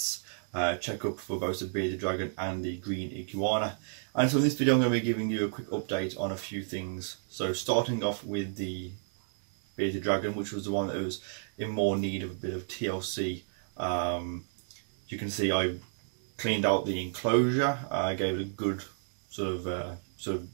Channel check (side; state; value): left; silent; digital silence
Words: checkup for both the bearded dragon and the green iguana. And so in this video I'm going to be giving you a quick update on a few things. So starting off with the bearded dragon, which was the one that was in more need of a bit of TLC. You can see I cleaned out the enclosure. I gave it a good sort of